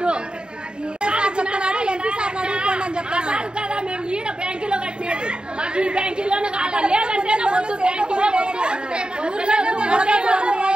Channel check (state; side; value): late; left; 0.050 ms